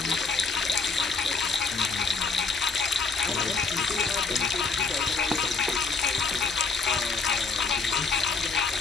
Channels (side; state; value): right; quieter; 4.6 dB